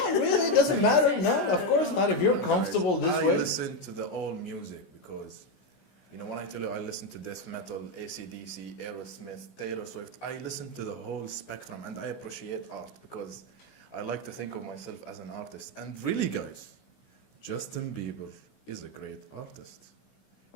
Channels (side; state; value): right; late; 16 ms